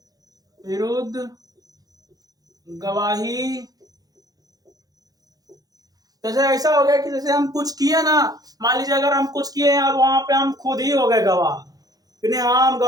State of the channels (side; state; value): left; late; 0.18 ms